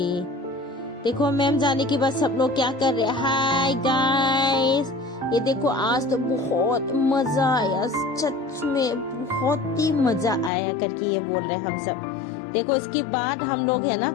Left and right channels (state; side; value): drops out; right; at 10.5 s